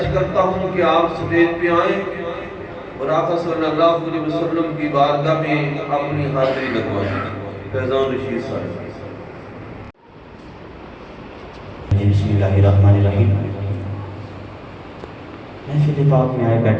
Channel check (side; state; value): both; identical; correlation 1.00